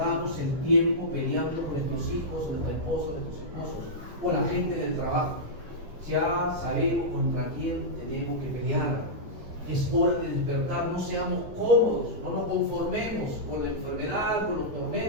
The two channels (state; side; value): late; left; 8.1 ms